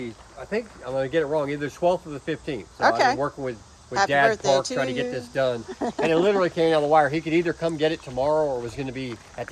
I think I'm going to get it wrong, either 12th or the 15th. So I've been working with Dad Park trying to get this done. And it literally came out of the wire. He could either come get it tomorrow or it was going to be at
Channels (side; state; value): both; identical; correlation 1.00